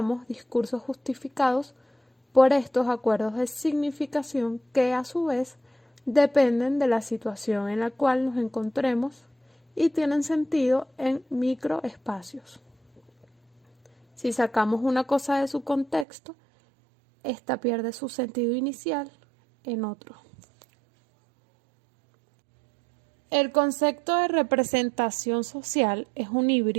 discursos justificados por estos acuerdos de significación que, a su vez, dependen de la situación en la cual nos encontremos y tienen sentido en microespacios. Si sacamos una cosa de su contexto, esta pierde su sentido inicial en otro. El concepto de representación social es un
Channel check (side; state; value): left; drops out; at 16.1 s